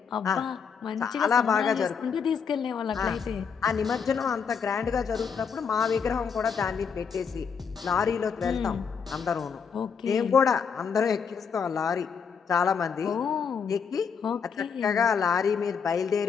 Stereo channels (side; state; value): right; quieter; 6.3 dB